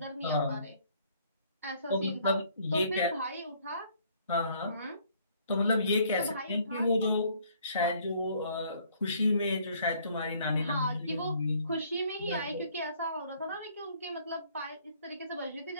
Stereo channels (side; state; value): both; inverted; correlation -0.62